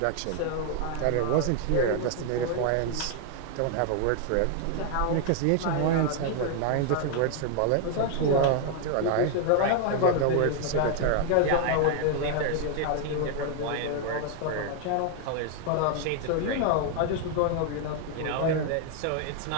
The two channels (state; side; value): different; both; correlation 0.00